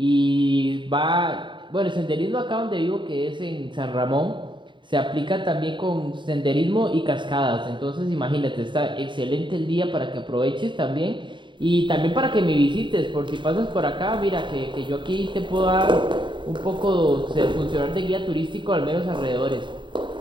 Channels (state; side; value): late; left; 0.23 ms